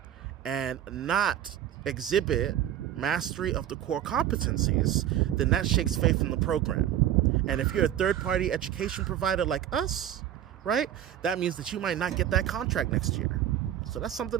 and not exhibit mastery of the core competencies, then that shakes faith in the program. And if you're a third-party education provider like us, right, that means that you might not get that contract next year. So that's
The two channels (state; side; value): quieter; left; 11.2 dB